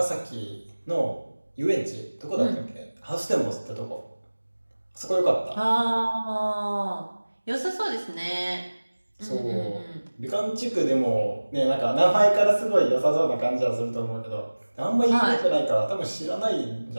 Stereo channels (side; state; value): both; inverted; correlation -1.00